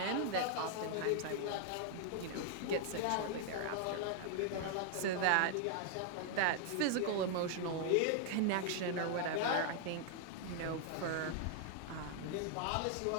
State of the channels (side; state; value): both; different; correlation 0.00